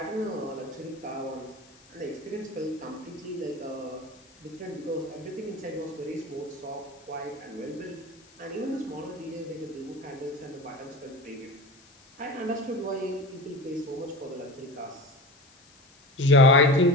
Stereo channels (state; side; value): noise; left; hiss, 27 dB below the sound